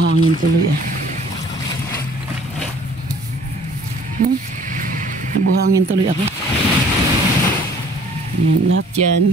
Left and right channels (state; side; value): normal; both; correlation 0.53